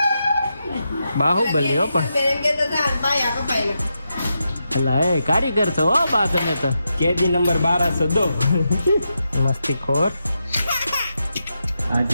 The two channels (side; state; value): both; inverted; correlation -0.86